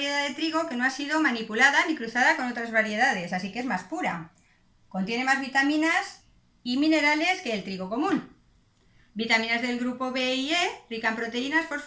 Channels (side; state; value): both; identical; correlation 1.00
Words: de trigo que no ha sido manipulada ni cruzada con otras variedades, así que es más pura. Contiene más vitaminas y minerales que el trigo común. Vitaminas del grupo B y E, rica en proteínas,